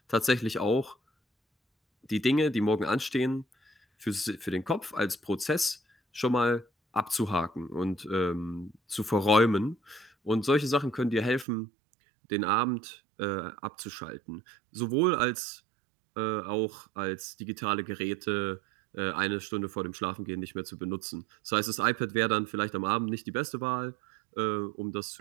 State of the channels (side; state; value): left; drops out; at 11.5 s